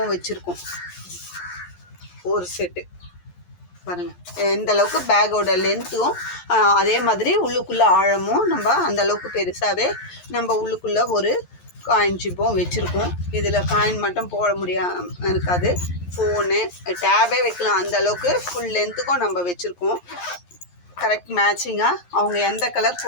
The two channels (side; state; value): right; late; 11 ms